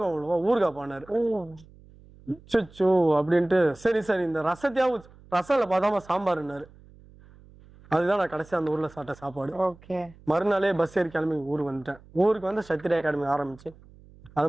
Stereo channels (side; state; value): right; noise; hum, 24 dB below the sound